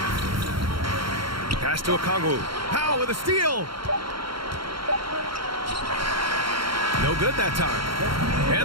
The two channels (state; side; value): late; left; 0.73 ms